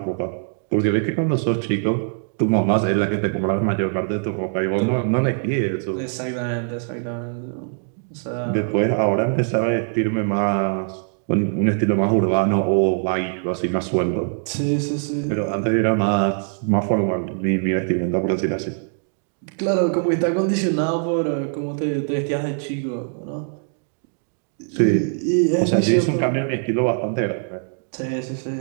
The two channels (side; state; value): left; silent; 64 dB below the other